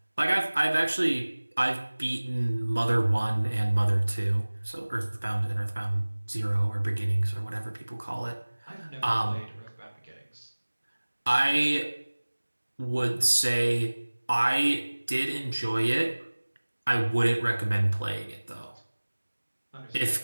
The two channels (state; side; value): inverted; both; correlation -1.00